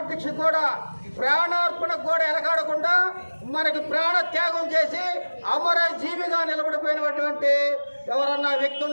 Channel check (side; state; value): both; inverted; correlation -1.00